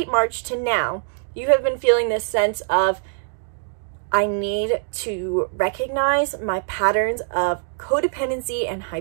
March to now, you have been feeling this sense of, I need to recognize my patterns of codependency and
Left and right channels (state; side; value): silent; left; 64 dB below the other